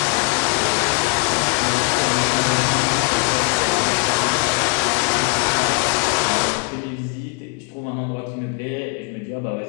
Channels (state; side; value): quieter; right; 31.5 dB